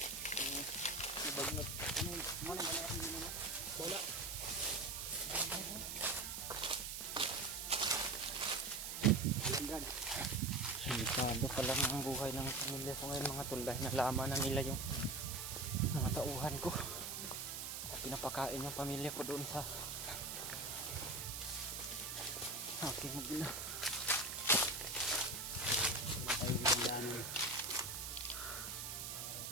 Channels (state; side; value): noise; right; hiss, 5 dB below the sound